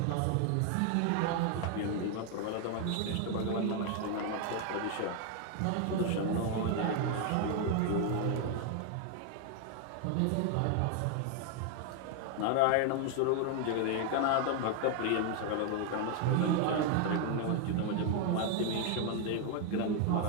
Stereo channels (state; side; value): different; both; correlation 0.00